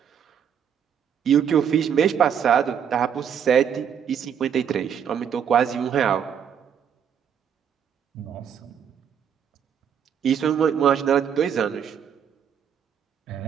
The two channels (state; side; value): quieter; left; 8.1 dB